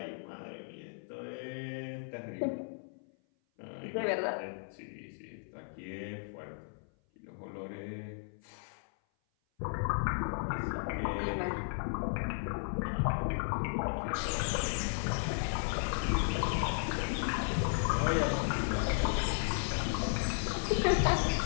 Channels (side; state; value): right; silent; 54 dB below the other